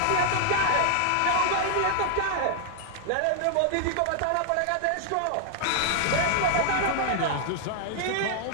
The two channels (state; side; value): different; both; correlation 0.00